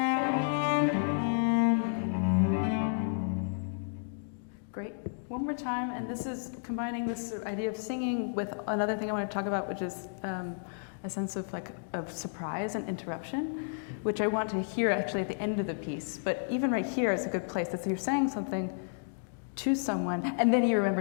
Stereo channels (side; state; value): right; silent; digital silence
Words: Great. One more time, and this is combining this sort of idea of singing with another thing I want to talk about, which is a sense of surprise and interruption, which I want to hear actually at the end of the piece. But even right here is a good place. That you're saying something to someone, and then you